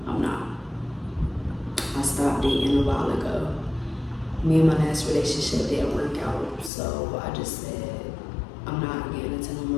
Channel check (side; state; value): right; drops out; at 6.7 s